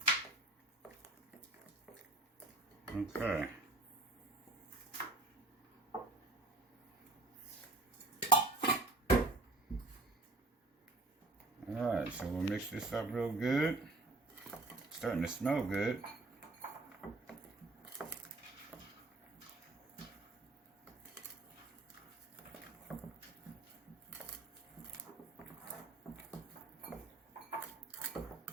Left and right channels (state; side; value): quieter; left; 3.1 dB